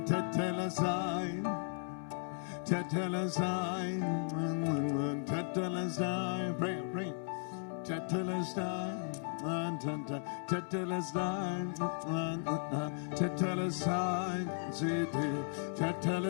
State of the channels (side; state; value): right; silent; 54 dB below the other